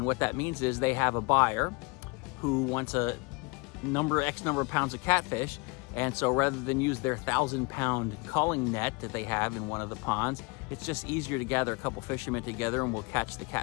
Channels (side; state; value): right; quieter; 28.8 dB